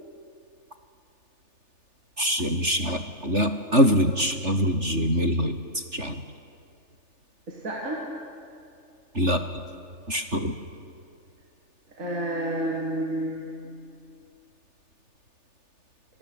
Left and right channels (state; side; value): late; left; 3.4 ms